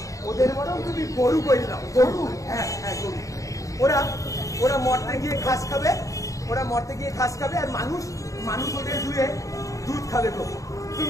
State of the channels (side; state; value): right; late; 0.16 ms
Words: বরং তুমি গরু করে দাও। গরু? হ্যাঁ গরু। ওরা মরতে গিয়ে ঘাস খাবে, আর মানুষ ওদের ধুয়ে দুধ খাবে গো।